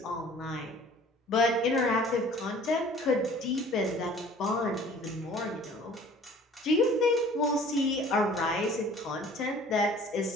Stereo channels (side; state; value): both; normal; correlation 0.50